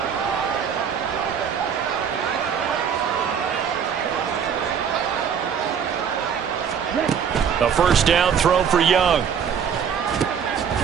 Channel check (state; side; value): quieter; left; 7.5 dB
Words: A 1st down throw for Young.